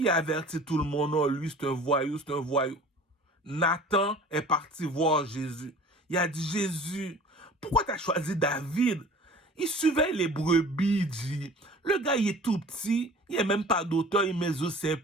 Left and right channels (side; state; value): both; normal; correlation 0.44